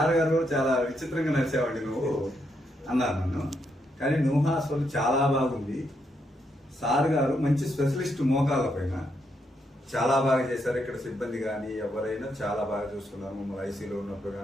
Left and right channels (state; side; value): normal; both; correlation 0.79